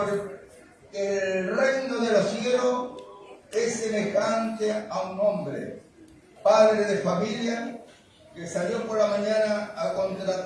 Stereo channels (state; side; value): identical; both; correlation 1.00